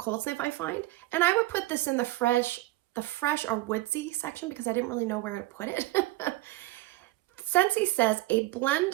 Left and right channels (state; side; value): quieter; left; 18.0 dB